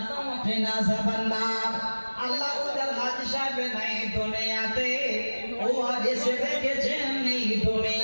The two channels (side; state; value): both; inverted; correlation -1.00